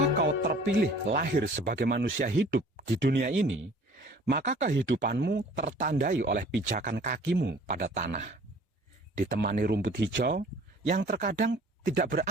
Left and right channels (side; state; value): both; normal; correlation 0.51